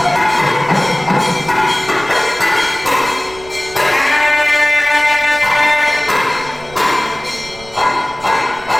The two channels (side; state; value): right; noise; rumble, 21 dB below the sound